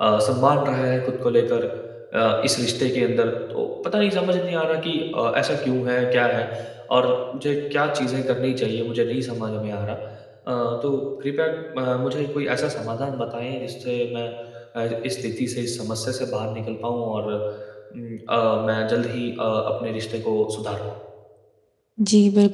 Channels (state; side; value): identical; both; correlation 1.00